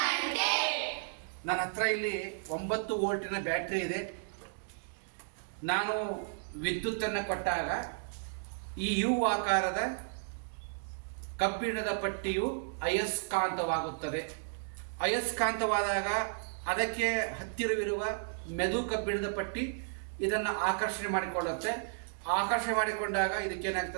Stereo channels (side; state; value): left; silent; digital silence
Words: ನನ್ನ ಹತ್ರ ಇಲ್ಲಿ 9 ವೋಲ್ಟಿನ ಬ್ಯಾಟ್ರಿ ಇದೆ. ನಾನು ವಿದ್ಯುತ್ತನ್ನು ಕೊಟ್ಟಾಗ ಈ ಯು ಆಕಾರದ ಕಬ್ಬಿಣದ ಪಟ್ಟಿಯು ಅಯಸ್ಕಾಂತವಾಗುತ್ತದೆ. ಅಯಸ್ಕಾಂತವಾದಾಗ ಅದಕ್ಕೆ ಹತ್ತಿರವಿರುವ ಮೆದು ಕಬ್ಬಿಣದ ಪಟ್ಟಿ ಇದನ್ನು ಆಕರ್ಷಣೆ ಮಾಡಿಕೊಳ್ಳುತ್ತೆ. ಆಕರ್ಷಣೆ ಮಾಡಿಕೊಂಡಾಗ